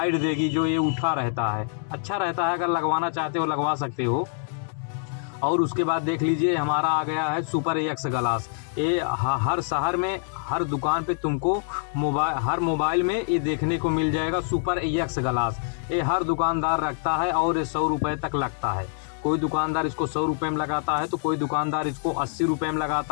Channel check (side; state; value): right; silent; 61 dB below the other